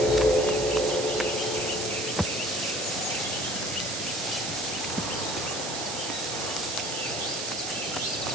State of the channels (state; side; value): noise; right; hiss, 5 dB below the sound